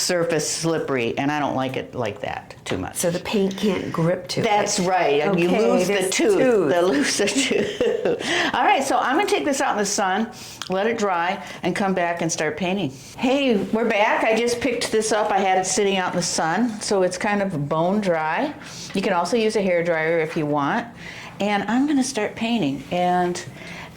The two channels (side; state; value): both; identical; correlation 1.00